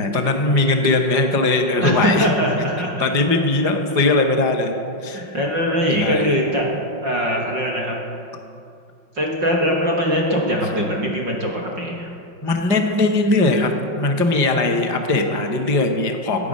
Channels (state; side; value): late; left; 5.5 ms